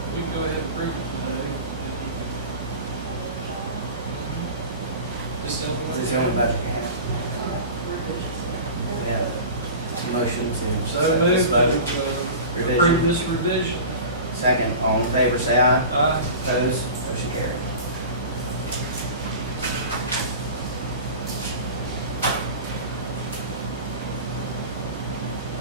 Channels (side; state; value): both; inverted; correlation -0.35